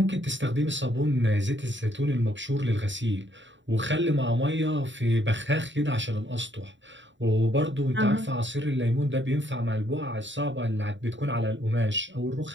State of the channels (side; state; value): left; late; 0.54 ms